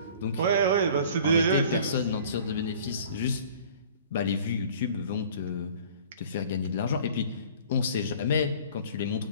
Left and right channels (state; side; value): inverted; both; correlation -0.48